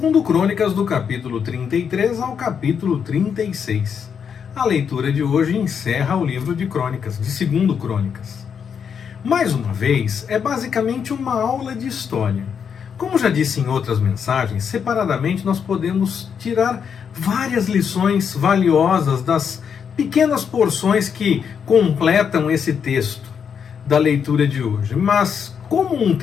Crônicas do capítulo 33 ao capítulo 36. A leitura de hoje encerra o livro de Crônicas, de 2 Crônicas. Mais uma vez, é basicamente uma aula de história. Como já disse em outras mensagens, separadamente nós podemos tirar várias lições valiosas das pequenas porções que completam esse texto da leitura de hoje. Mas, como um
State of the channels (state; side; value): quieter; right; 7.1 dB